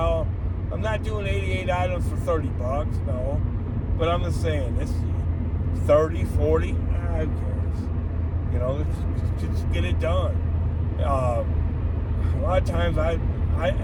I'm not doing 88 items for $30, no. But I'm just saying, it's 30, 40, who cares? Just get it done. A lot of times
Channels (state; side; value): identical; both; correlation 1.00